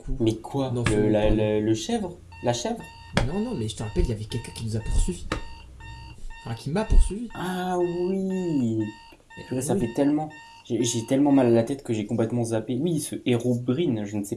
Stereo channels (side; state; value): both; identical; correlation 1.00